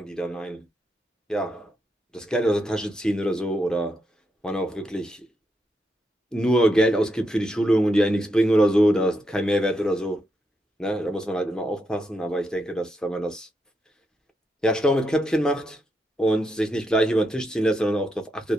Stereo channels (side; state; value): both; normal; correlation 0.82